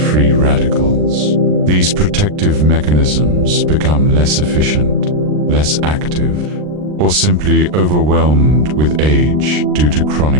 radicals. These protective mechanisms become less efficient, less active, or simply overwhelmed with age due to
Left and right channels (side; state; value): left; late; 40 ms